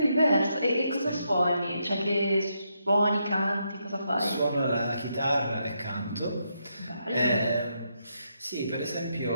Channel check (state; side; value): inverted; both; correlation -0.80